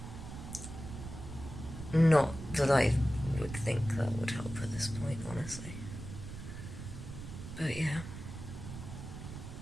Not that I would think that would help at this point, honestly. But yeah,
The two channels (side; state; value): right; noise; rumble, 10 dB below the sound